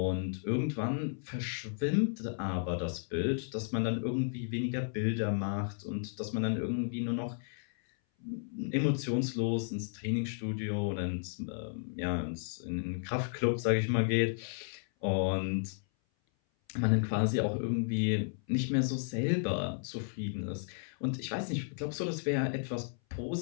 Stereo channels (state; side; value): silent; right; 55 dB below the other